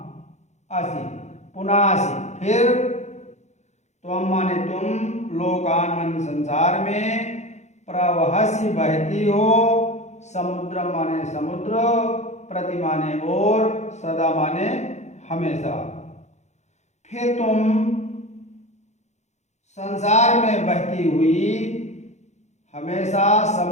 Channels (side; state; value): right; late; 0.33 ms